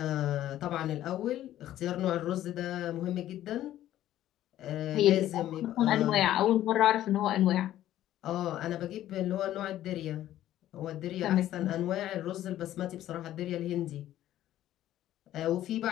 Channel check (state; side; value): quieter; right; 13.0 dB